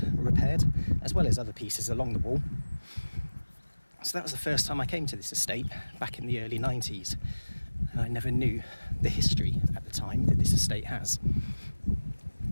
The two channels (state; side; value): inverted; both; correlation -1.00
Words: repaired, as well as other pieces along the wall. So that was the first time I came to this estate back in the early 90s. And I never knew the history at the time that this estate has,